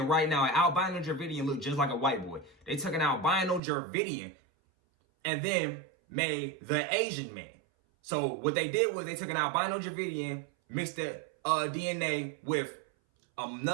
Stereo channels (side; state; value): left; drops out; at 3.6 s